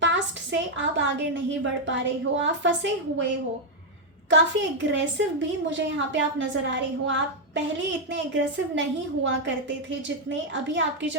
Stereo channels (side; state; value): both; normal; correlation 0.00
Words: पास्ट से आप आगे नहीं बढ़ पा रहे हो, आप फंसे हुए हो। काफ़ी एग्रेसिव भी मुझे यहाँ पे आप नज़र आ रहे हो। आप पहले इतने एग्रेसिव नहीं हुआ करते थे जितने अभी आपकी